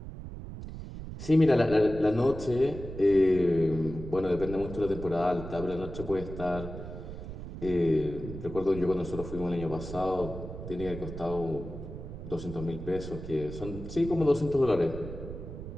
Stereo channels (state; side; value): noise; right; rumble, 10 dB below the sound